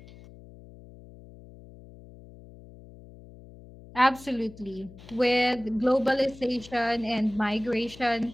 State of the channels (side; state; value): left; noise; hum, 20 dB below the sound